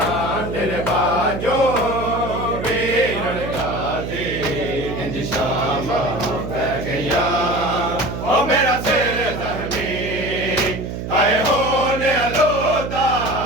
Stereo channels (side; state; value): right; noise; hum, 6 dB below the sound